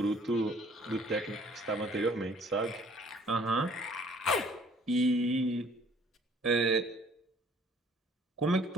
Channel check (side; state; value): both; normal; correlation 0.57